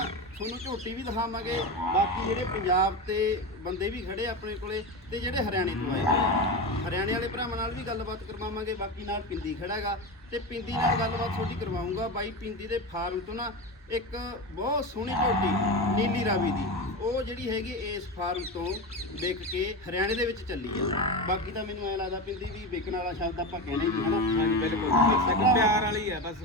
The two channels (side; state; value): both; normal; correlation 0.20